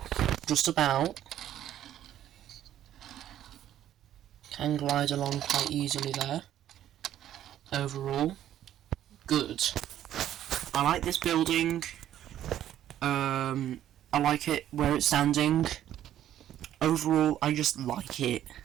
just about. Can glide along quite easily there. Overall, good. I like this building. I like it where it's standing. Overall, I just like it.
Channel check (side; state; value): left; quieter; 11.7 dB